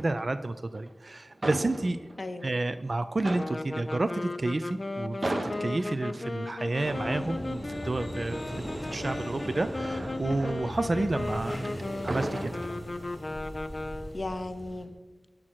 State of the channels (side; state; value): both; normal; correlation 0.97